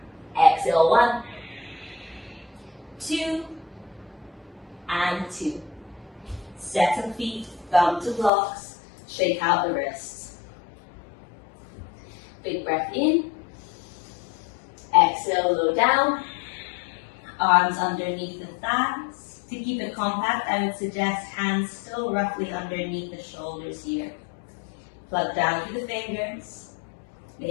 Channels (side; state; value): right; drops out; at 8.3 s